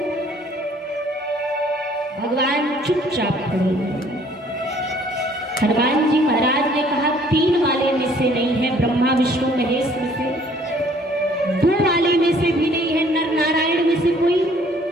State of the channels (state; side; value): normal; both; correlation 0.59